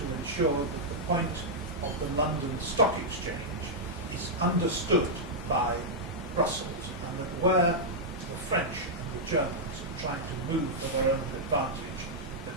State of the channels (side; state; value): both; normal; correlation -0.07